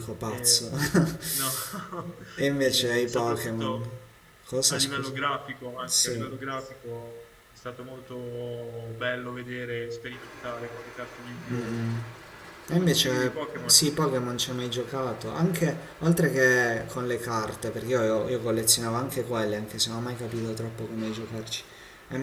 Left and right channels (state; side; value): identical; both; correlation 1.00